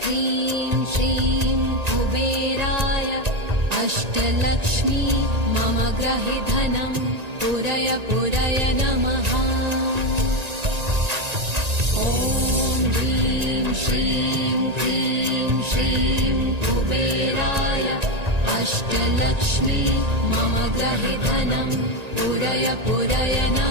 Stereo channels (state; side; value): late; left; 1.9 ms